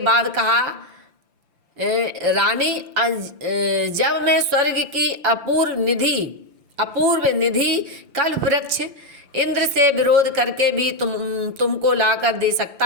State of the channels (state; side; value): late; left; 5.8 ms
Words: कहा, रानी, जब मैं स्वर्ग की अपूर्व निधि कल्प वृक्ष इंद्र से विरोध करके भी तुमको लाकर दे सकता